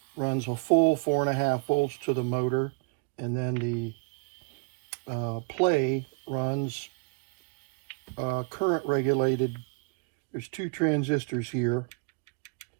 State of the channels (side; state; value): left; quieter; 32.0 dB